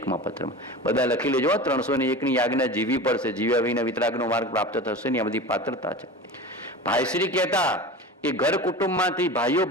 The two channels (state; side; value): normal; both; correlation 0.33